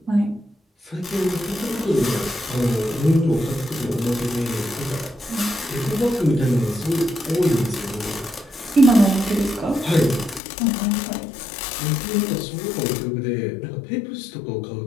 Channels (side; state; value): right; drops out; at 10.4 s